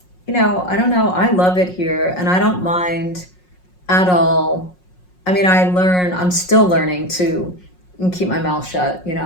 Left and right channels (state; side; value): late; right; 5.5 ms